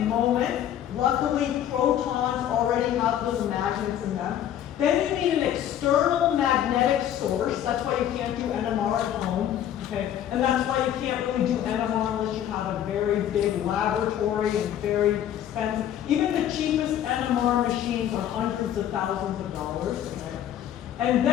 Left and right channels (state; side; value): quieter; right; 10.8 dB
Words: Luckily, protons already have little magnets in them. Then you need an external magnetic source. That's why you can't do NMR at home. Okay? And that's why you can't really do NMR unless you have a very big laboratory and very expensive. Even the cheapest NMR machines are hundreds of thousands of dollars. Okay? And